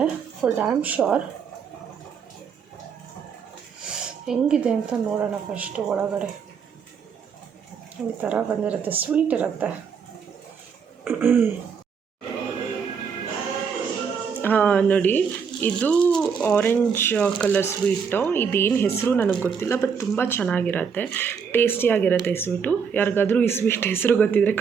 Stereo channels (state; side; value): quieter; left; 6.4 dB